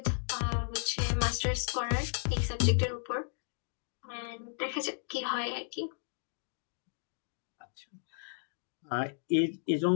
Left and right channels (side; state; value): right; silent; digital silence